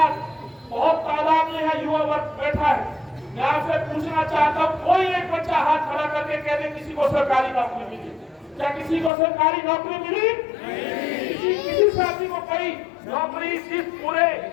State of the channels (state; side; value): drops out; right; at 9.1 s